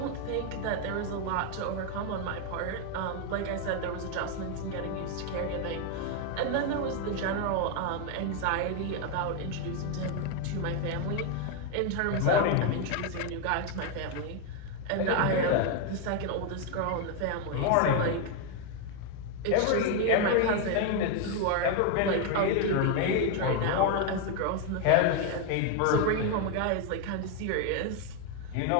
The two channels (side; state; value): both; different; correlation 0.01